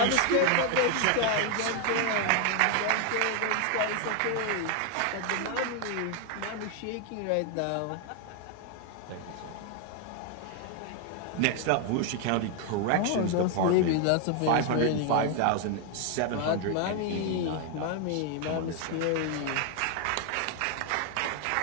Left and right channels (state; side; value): different; both; correlation 0.00